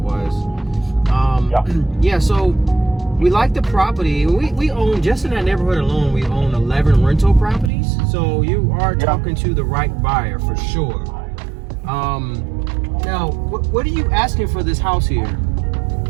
Yeah. Yeah, so we like the property. We own, just in that neighborhood alone, we own 11 rental properties. So you are talking to the right buyer for sure. Now, what are you asking for this house here?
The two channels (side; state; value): left; drops out; at 7.7 s